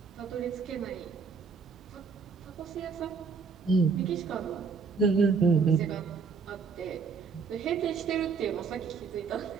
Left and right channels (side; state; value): left; quieter; 5.3 dB